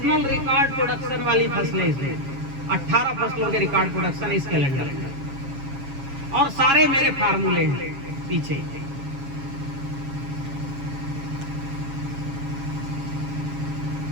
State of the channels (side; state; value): left; late; 7.3 ms